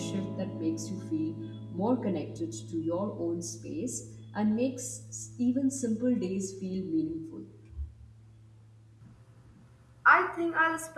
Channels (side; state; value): both; identical; correlation 1.00